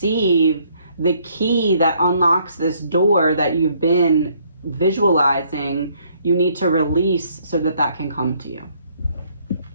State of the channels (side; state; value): both; inverted; correlation -0.66